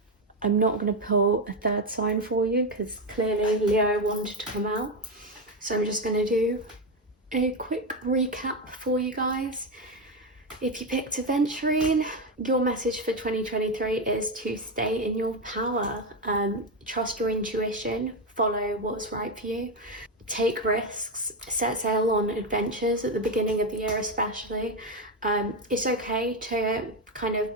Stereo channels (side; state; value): both; normal; correlation 0.10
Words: I'm not going to pull a third sign for you because clearly Leo wanted to come out. So I'm just going to do a quick recap for you guys. If you picked Aventurine, your message for 2023 is to stay in your power. Trust your intuition, follow what's right for you. Take risks, set sail on adventures at the beginning of the year especially. It's okay to kind